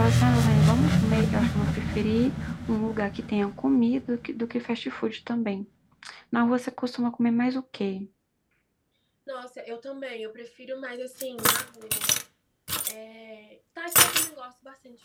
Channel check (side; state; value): both; identical; correlation 1.00